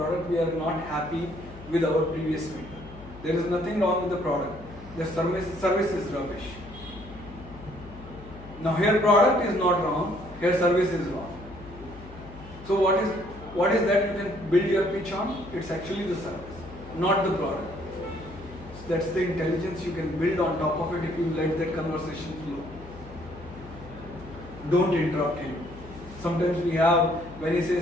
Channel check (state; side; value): noise; left; hum, 17 dB below the sound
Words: We are not happy with our previous vendor. There is nothing wrong with the product. The service is rubbish. Now here product is not wrong, here service is wrong. So what is that you can build your pitch on? It's actually the service, not the product. So that's the intelligence you can build on top of it if you let that conversation flow. Don't interrupt him. Sometimes we have, when he